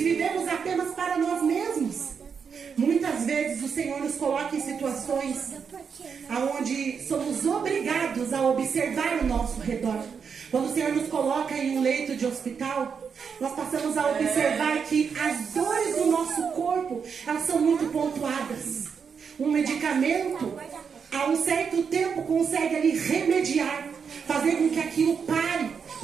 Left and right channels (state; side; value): quieter; left; 6.4 dB